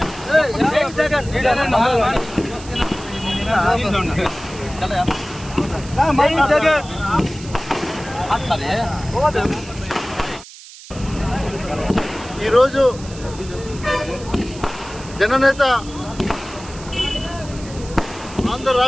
ఈరోజు జననేత ఆంధ్ర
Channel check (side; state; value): right; noise; hiss, 17 dB below the sound